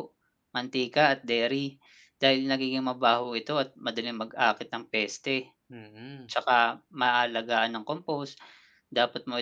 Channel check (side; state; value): both; identical; correlation 1.00